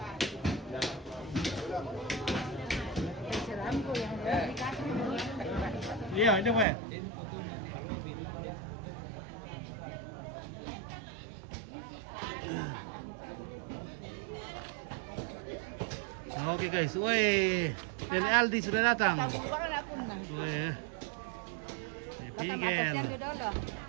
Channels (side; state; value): left; drops out; at 6.7 s